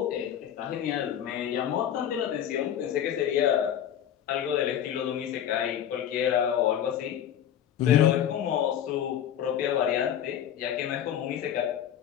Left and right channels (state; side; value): quieter; right; 10.1 dB